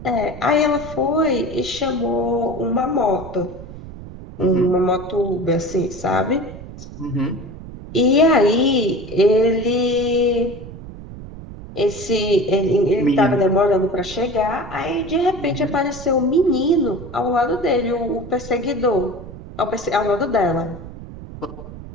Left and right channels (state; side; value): noise; right; rumble, 14 dB below the sound